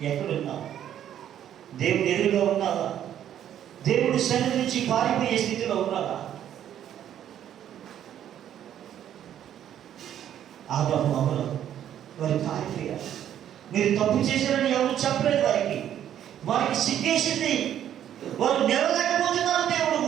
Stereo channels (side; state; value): left; quieter; 10.5 dB